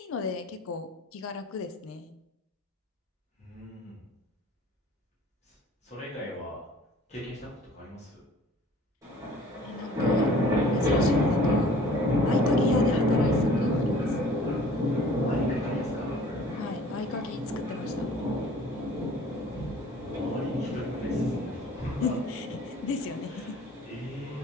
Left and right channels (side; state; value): both; normal; correlation 0.50